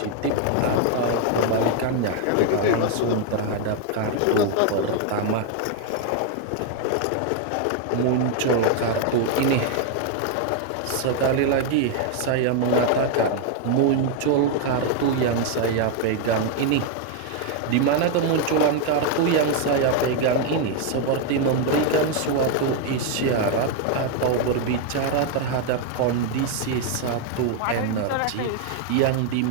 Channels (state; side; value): different; both; correlation 0.00